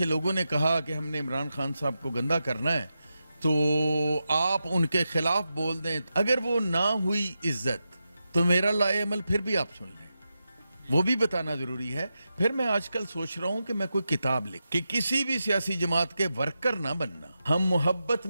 لوگوں نے کہا کہ ہم نے عمران خان صاحب کو گندا کرنا ہے تو آپ ان کے خلاف بول دیں. اگر وہ نہ ہوئی عزت تو میرا لائے عمل پھر بھی آپ سن لیں، وہ بھی بتانا ضروری ہے. پھر میں آج کل سوچ رہا ہوں کہ میں کوئی کتاب لکھ کہ کسی بھی سیاسی جماعت کے ورکر نہ بننا. ہم محبت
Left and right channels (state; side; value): inverted; both; correlation -0.89